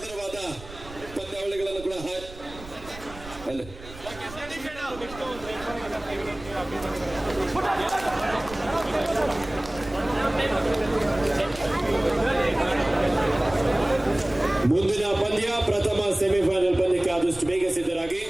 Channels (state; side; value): noise; right; rumble, 16 dB below the sound